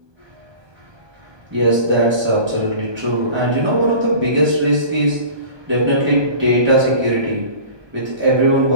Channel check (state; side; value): late; left; 1.2 ms